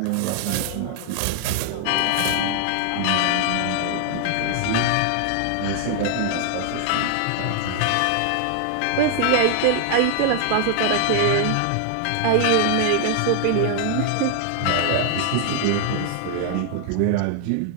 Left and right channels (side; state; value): both; different; correlation 0.00